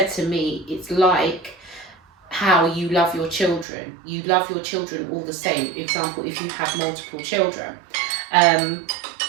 to me, it's like how you love your children. You love your children all the same. Example, if you have multiple children,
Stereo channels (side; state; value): left; drops out; at 3.7 s